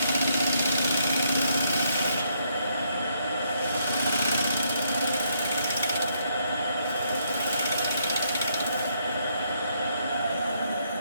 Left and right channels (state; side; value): inverted; both; correlation -0.73